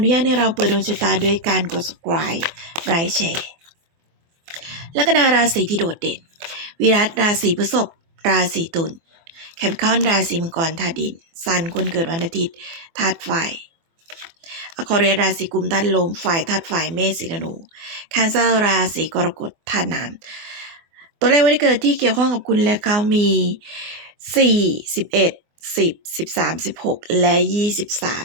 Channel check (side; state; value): left; late; 24 ms